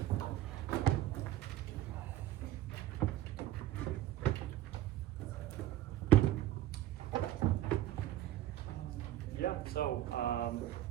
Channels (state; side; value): quieter; left; 13.5 dB